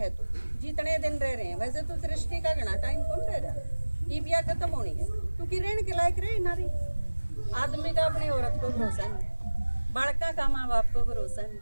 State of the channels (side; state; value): both; inverted; correlation -1.00